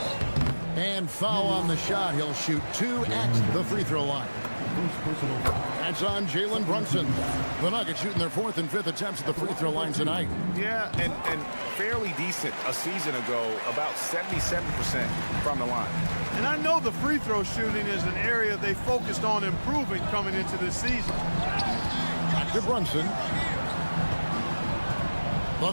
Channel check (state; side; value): inverted; both; correlation -1.00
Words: And foul on the shot. He'll shoot 2 at the free throw line. That's on Jalen Brunson. The Nuggets shooting their 4th and 5th attempts at the free throw line tonight. Yeah, and fairly decent a season ago, about 77% from the line. And I know the free throw shooting is an area they focused on improving coming into this season. Back to Brunson. The